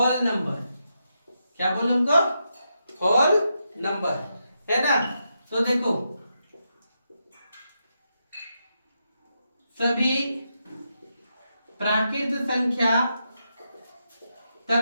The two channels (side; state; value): both; inverted; correlation -0.84